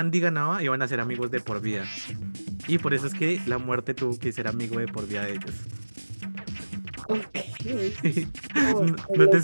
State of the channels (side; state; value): both; inverted; correlation -1.00